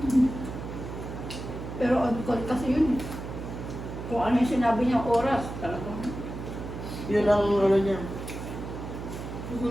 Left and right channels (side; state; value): right; noise; hum, 8 dB below the sound